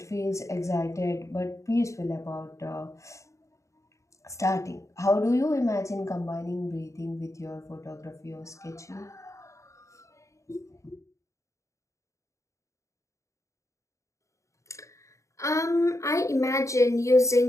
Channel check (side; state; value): right; late; 0.15 ms